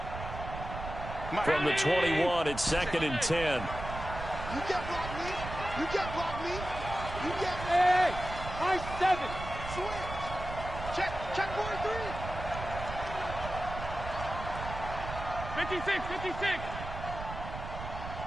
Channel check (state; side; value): noise; right; rumble, 8 dB below the sound